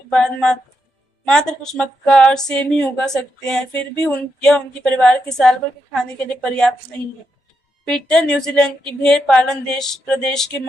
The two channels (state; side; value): normal; both; correlation 0.83